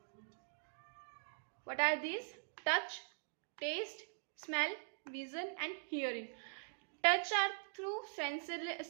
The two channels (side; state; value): left; silent; digital silence